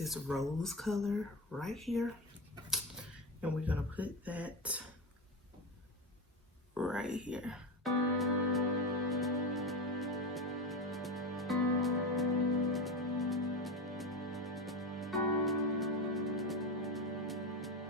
rose color right here, and we're gonna put that right here.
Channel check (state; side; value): normal; both; correlation 0.19